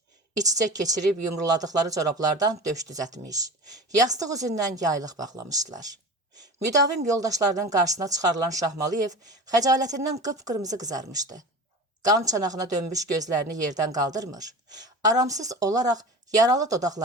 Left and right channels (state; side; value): normal; both; correlation 0.33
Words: İç-içə keçirib yumruladıqları corablardan döş düzətmiş. Yastıq üzündən yaylıq bağlamışdılar. Müdavim yoldaşlarının qarşısına çıxarılan Şahmaliyev xəcalətindən qıpqırmızı qızarmışdı. Qan çanağına dönmüş gözlərini yerdən qaldırmır. Aramsız olaraq yaralı